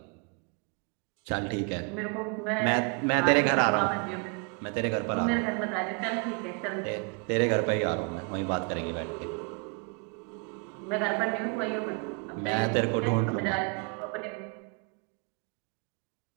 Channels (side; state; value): left; quieter; 34.9 dB